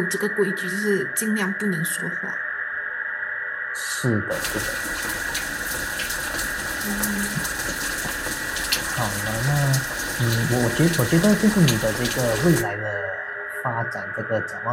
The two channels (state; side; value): identical; both; correlation 1.00